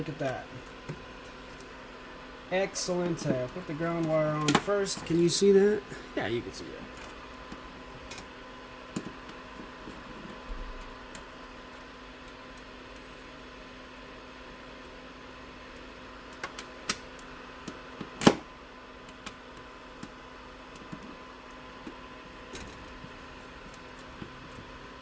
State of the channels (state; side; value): identical; both; correlation 1.00